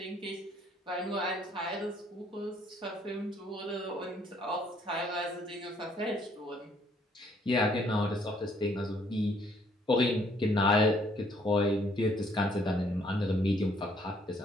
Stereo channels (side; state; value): both; normal; correlation 0.65